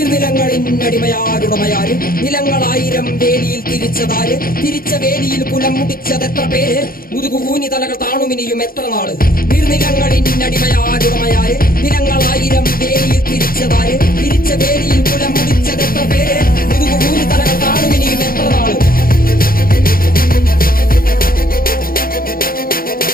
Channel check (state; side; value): late; right; 0.42 ms